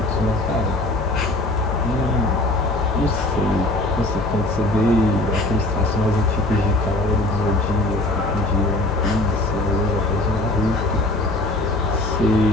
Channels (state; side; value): noise; left; hum, 6 dB below the sound